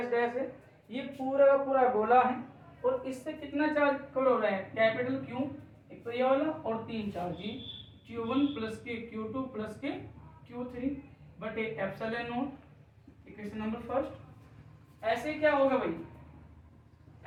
डैश है, ये पूरा का पूरा गोला है और इससे कितना चार्ज कवर हो रहा है? कैपिटल क्यू, एक तो ये वाला, और 3 चार्ज जी, Q1 प्लस के Q2 प्लस के Q3 बटे epsilon not. Equation number first. ऐसे क्या होगा भाई?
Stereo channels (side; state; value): both; identical; correlation 1.00